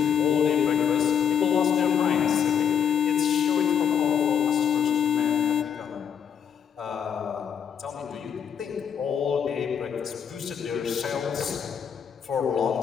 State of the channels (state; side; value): quieter; right; 8.3 dB